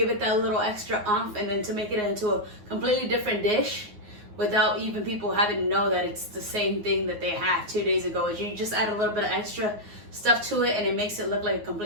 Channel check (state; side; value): late; left; 9.5 ms